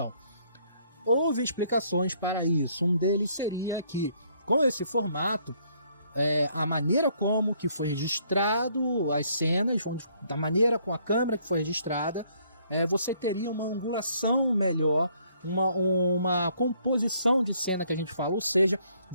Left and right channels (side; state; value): both; inverted; correlation -0.66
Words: houve explicações para isso. Um deles seria que, com esse formato, a maneira como que foi registrado as cenas, da maneira com a câmera que foi registrada, você teria uma angulação melhor uma composição de cena que a gente fala, ou seja,